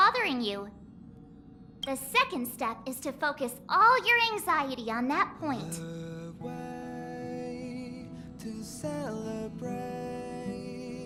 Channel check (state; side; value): identical; both; correlation 1.00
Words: you. The second step is to focus all your anxiety on that point.